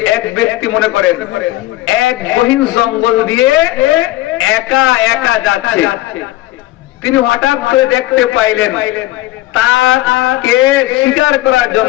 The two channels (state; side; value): quieter; right; 16.6 dB